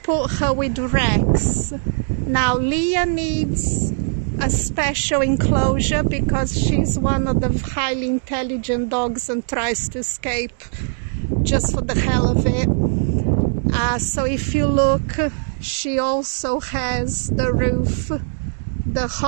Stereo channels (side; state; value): left; silent; digital silence